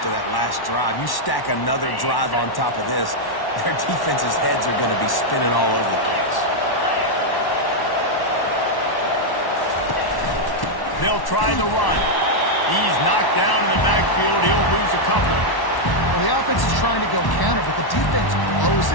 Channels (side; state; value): right; late; 1.1 ms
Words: that last drive. You stack another drive on top of this, their defense's heads are going to be spinning all over the place. They'll try the run. He's knocked down in the backfield. He'll lose a couple. Well, the offense is trying to go counter, but the defense blows